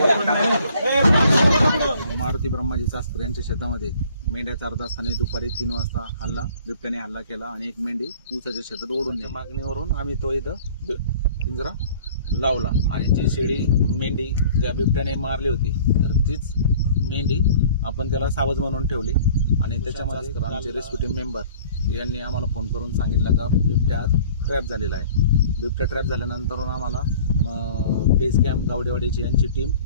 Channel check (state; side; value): inverted; both; correlation -0.50